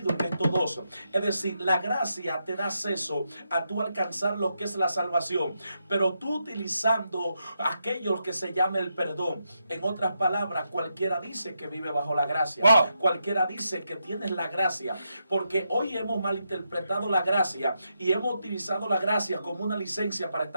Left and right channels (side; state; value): both; inverted; correlation -0.83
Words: en estos 2. Es decir, la gracia te da acceso a tú alcanzar lo que es la salvación, pero tú utilizando aquello que se llama el perdón. En otras palabras, cualquiera dice que vive bajo la gracia. Wow. Cualquiera dice que tienes la gracia, porque hoy hemos malinterpretado la gracia y hemos utilizado la gracia como una licencia para